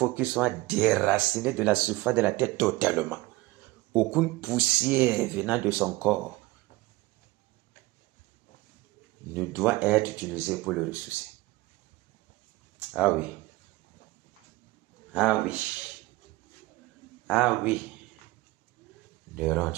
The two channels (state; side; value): quieter; left; 20.2 dB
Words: qu'il soit déraciné de la surface de la tête totalement. Aucune poussière venant de son corps ne doit être utilisée pour le ressusciter. Ah oui. Ah oui. Ah oui. Néron,